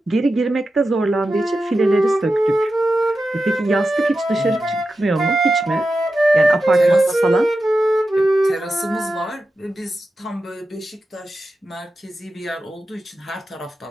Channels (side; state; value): both; normal; correlation 0.91